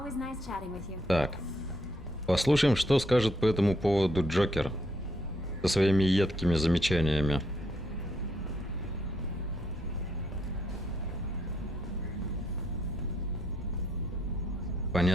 nice chatting with you. Так. Послушаем, что скажет по этому поводу Джокер. Со своими едкими замечаниями.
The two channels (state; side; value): normal; both; correlation 0.73